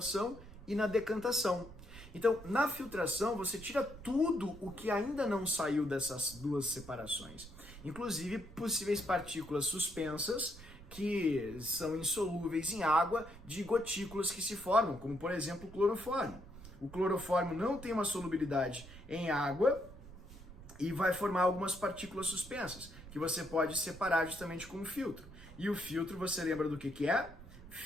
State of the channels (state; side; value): noise; right; rumble, 16 dB below the sound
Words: e na decantação. Então, na filtração, você tira tudo o que ainda não saiu dessas duas separações. Inclusive, possíveis partículas suspensas que são insolúveis em água de gotículas que se formam, como, por exemplo, o clorofórmio. O clorofórmio não tem uma solubilidade em água e vai formar algumas partículas suspensas, que você pode separar justamente com o filtro. E o filtro, você lembra do que é?